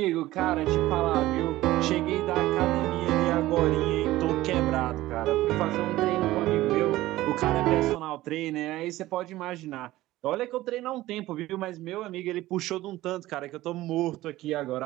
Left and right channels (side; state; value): left; quieter; 16.6 dB